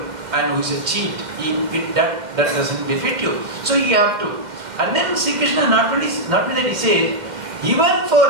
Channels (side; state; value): left; late; 2.1 ms